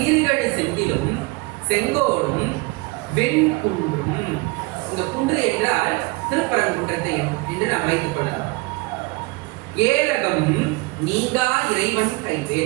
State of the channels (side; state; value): left; quieter; 25.3 dB